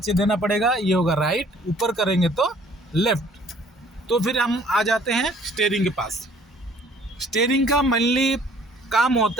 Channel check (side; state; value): both; normal; correlation 0.57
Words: देना पड़ेगा, ये होगा राइट, ऊपर करेंगे तो लेफ्ट। तो फिर हम आ जाते हैं स्टीयरिंग के पास। स्टीयरिंग का मेनली काम